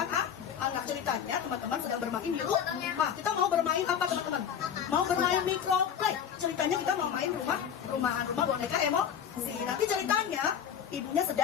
anak. Ceritanya teman-teman sedang bermain di rumah. Kita mau bermain apa teman-teman? Mau bermain microplay. Ceritanya kita mau main rumah rumah boneka emosi. Nanti ceritanya ibunya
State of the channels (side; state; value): right; quieter; 8.4 dB